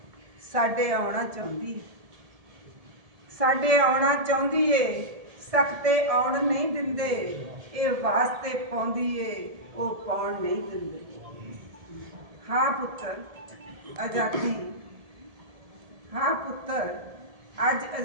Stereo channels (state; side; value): late; left; 1.7 ms